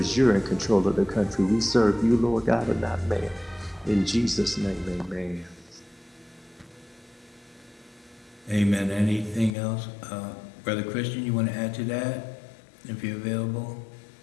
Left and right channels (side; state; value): right; drops out; at 9.5 s